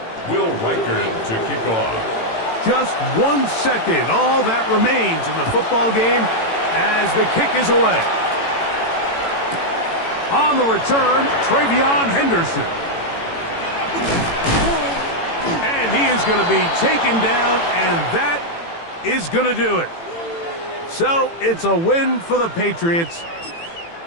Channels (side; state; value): right; late; 18 ms